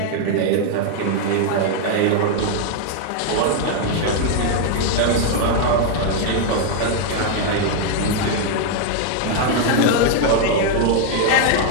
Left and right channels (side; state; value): both; different; correlation 0.00